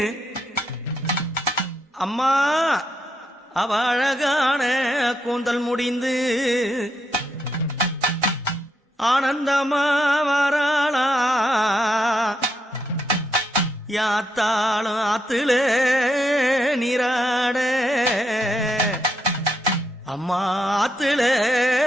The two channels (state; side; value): normal; both; correlation 0.79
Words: அம்மா அவ அழகான கூந்தல் முடிந்து ஆனந்தமா வராளா யாத்தாளும் ஆத்துல நீராட அம்மா ஆத்துல